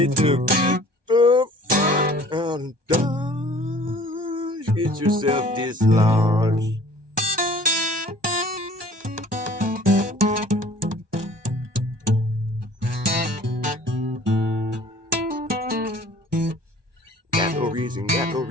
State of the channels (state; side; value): late; left; 1.2 ms